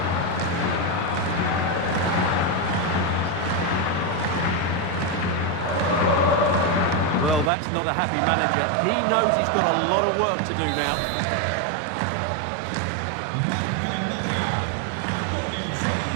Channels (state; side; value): drops out; left; at 7.5 s